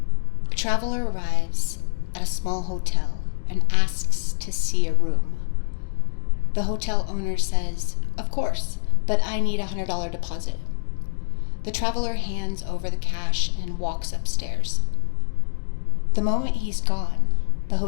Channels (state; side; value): silent; right; digital silence